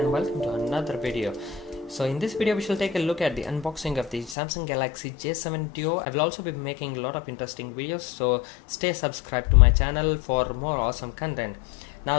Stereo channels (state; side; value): drops out; right; at 4.4 s